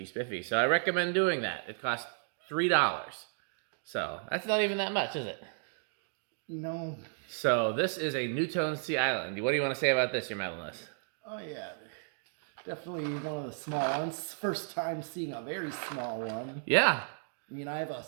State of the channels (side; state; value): left; silent; digital silence